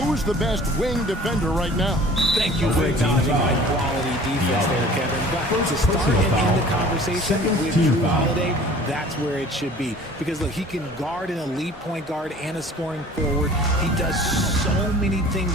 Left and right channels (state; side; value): normal; both; correlation 0.47